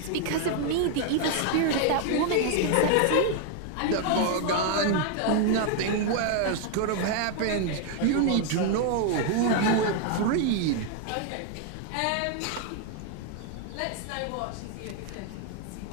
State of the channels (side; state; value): both; different; correlation 0.00